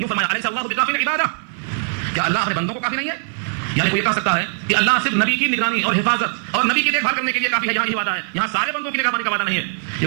فرمایا، الیس اللہ بکافٍ عبادہ، کیا اللہ اپنے بندوں کو کافی نہیں ہے؟ یعنی کوئی یہ کہہ سکتا ہے کہ اللہ صرف نبی کی نگرانی اور حفاظت اور نبی کی دیکھ بھال کرنے کے لیے کافی ہے، یہاں یہ وعدہ ہے، یہاں سارے بندوں کی نگرانی کا وعدہ نہیں ہے،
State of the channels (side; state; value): left; silent; 57 dB below the other